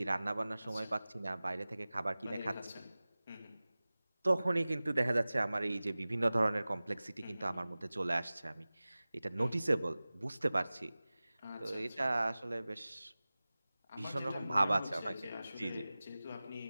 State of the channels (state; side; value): inverted; both; correlation -0.98